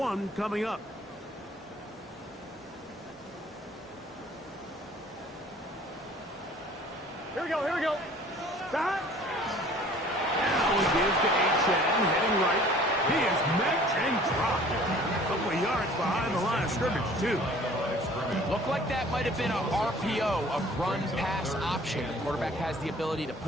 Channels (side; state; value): both; normal; correlation 0.51